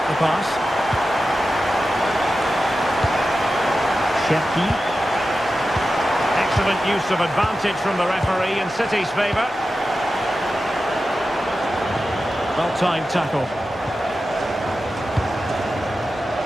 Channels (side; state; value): both; normal; correlation 0.92